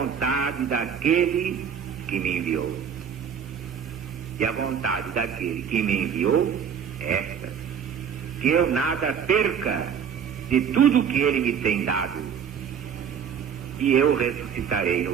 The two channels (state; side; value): quieter; left; 7.6 dB